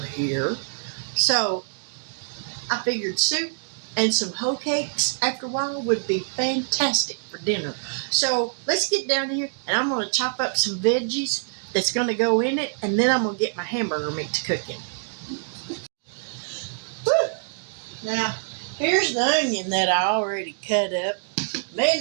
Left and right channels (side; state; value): left; silent; digital silence